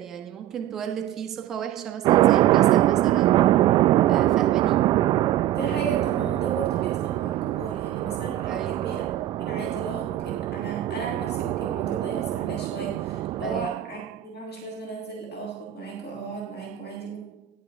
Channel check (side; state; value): left; quieter; 12.5 dB